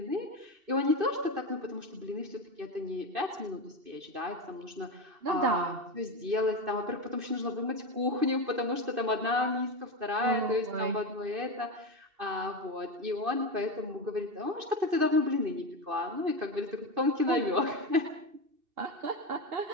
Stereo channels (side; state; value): left; late; 2.6 ms